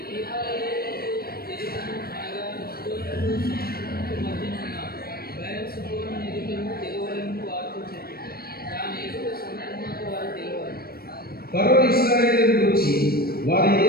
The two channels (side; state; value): right; late; 0.44 ms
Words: ఫరో ఇశ్రాయేలును గురించి వారి